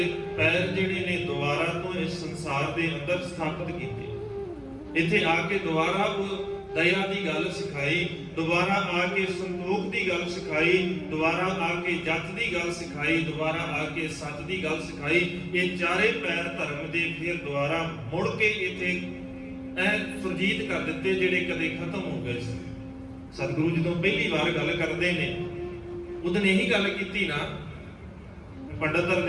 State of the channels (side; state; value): both; identical; correlation 1.00